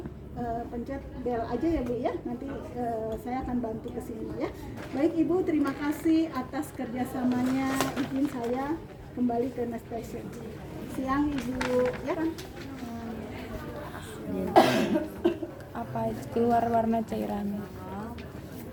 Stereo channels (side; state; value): both; identical; correlation 1.00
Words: pencet bel aja ya, Bu ya. Nanti saya akan bantu ke sini ya. Baik Ibu, terima kasih atas kerjasamanya. Izin saya kembali ke Nurse Station. Siang Ibu ya kan. Apa keluar warna cairannya?